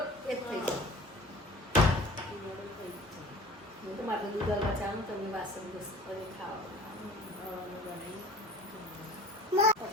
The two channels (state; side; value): normal; both; correlation 0.43